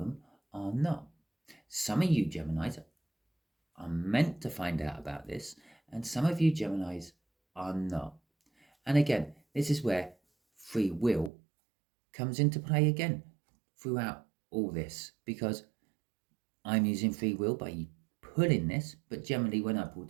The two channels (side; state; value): left; drops out; at 11.3 s